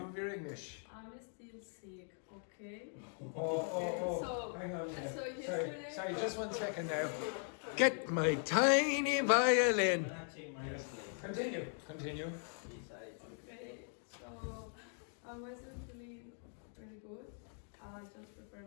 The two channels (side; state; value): right; silent; 51 dB below the other